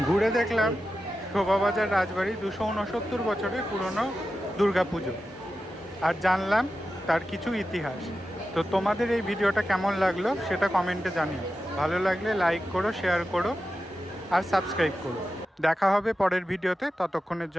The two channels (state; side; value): normal; both; correlation 0.91